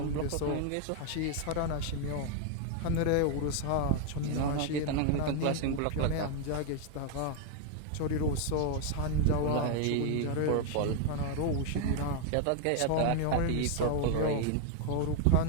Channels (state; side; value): different; both; correlation 0.00